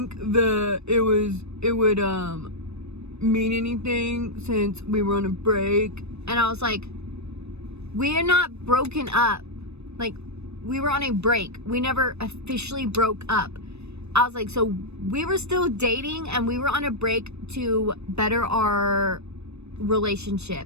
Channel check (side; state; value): left; late; 0.80 ms